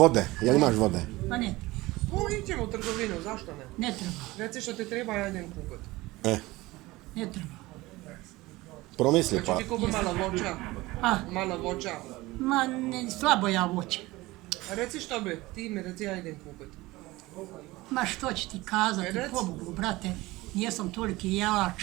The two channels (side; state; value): left; quieter; 19.9 dB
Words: jel imaš vode? Ma ne treba, Iđemo u trgovinu, zašto ne? ne treba, Reci što ti treba, ja idem kupiti. ne treba. Promisli pa. Znači ti kupi malo voća, A, malo voća. ma ne, slabo ja voće. A reci što bi, ti mi reci, ja idem kupiti. Ma što će ti kazati, Reci. pobogu, brate, nijesam toliki jelač.